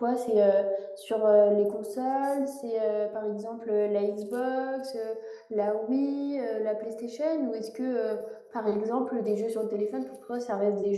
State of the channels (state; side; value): identical; both; correlation 1.00